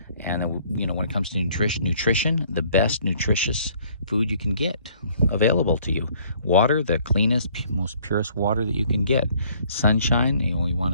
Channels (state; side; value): inverted; both; correlation -0.60